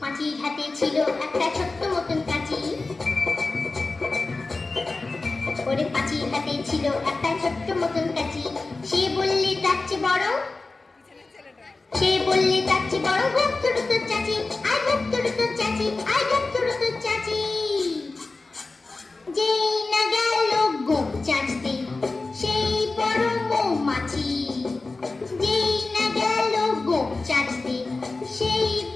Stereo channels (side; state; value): right; quieter; 3.5 dB